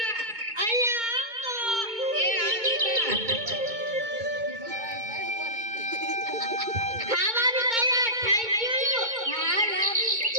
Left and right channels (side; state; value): left; late; 2.2 ms